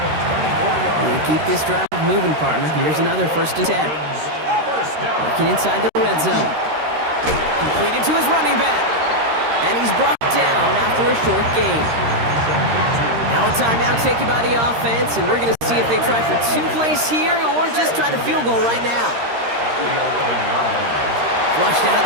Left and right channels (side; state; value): left; late; 13 ms